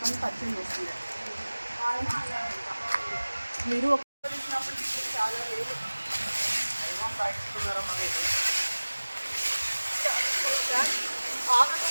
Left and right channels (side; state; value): both; inverted; correlation -1.00